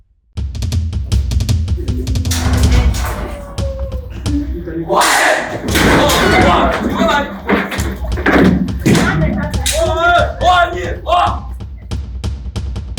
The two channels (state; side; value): identical; both; correlation 1.00